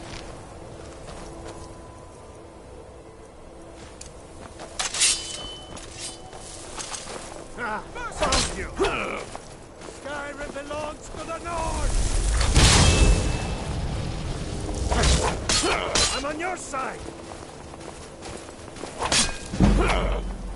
Found you! Skyrim belongs to the North! I'm on your side!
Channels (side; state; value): both; identical; correlation 1.00